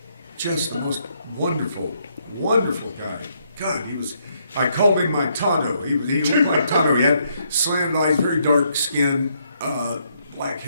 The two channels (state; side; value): inverted; both; correlation -0.73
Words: Just the most wonderful, wonderful guy. God, I called him my Tonto. He looked like Tonto. He had slanted eyes, very dark skin, black